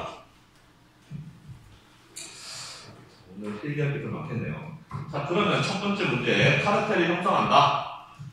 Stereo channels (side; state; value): both; identical; correlation 1.00